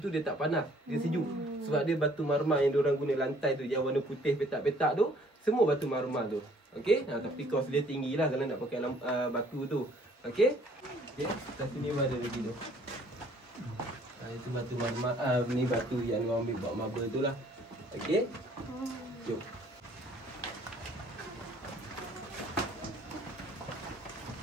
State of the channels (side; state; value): both; normal; correlation 0.59